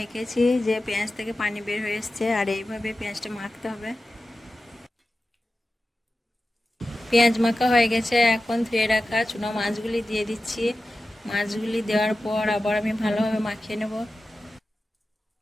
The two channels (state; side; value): normal; both; correlation 0.94